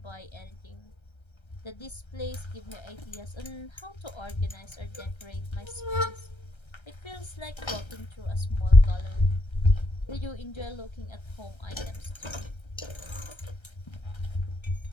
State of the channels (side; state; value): right; late; 1.3 ms